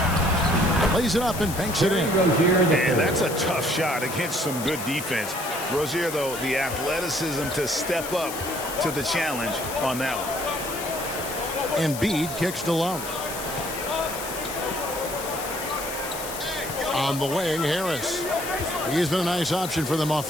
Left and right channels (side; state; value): left; noise; hiss, 9 dB below the sound